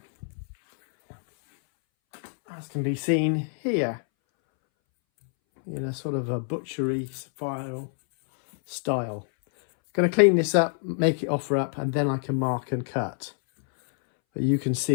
As can be seen here, in a sort of a butchery file style. Going to clean this up, make it offer up, and then I can mark and cut. But you can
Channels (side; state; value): right; silent; 61 dB below the other